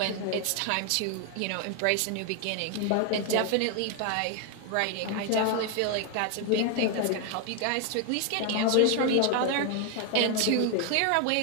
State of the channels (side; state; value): both; different; correlation 0.00